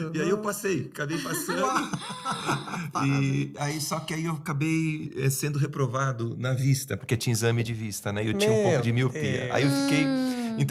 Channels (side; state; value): both; identical; correlation 1.00